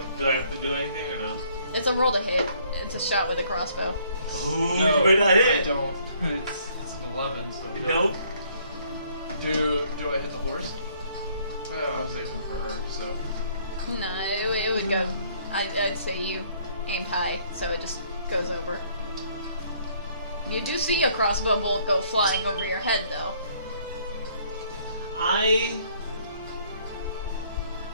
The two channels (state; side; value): inverted; both; correlation -0.63